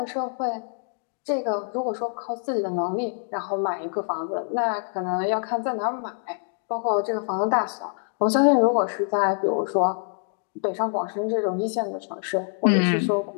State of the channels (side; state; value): right; silent; 61 dB below the other